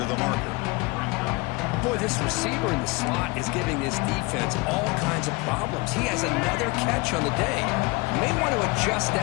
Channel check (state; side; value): quieter; right; 25.4 dB